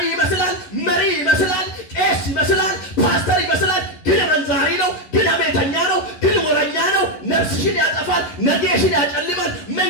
ይመስላል፣ መሪ ይመስላል፣ ቄስ ይመስላል፣ ፓስተር ይመስላል። ግን መንዛሪ ነው፣ ግን አሜተኛ ነው፣ ግን ወረኛ ነው። ነፍስሽን ያጠፋል፣ ነገሽን ያጨልማል፣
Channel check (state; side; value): late; right; 11 ms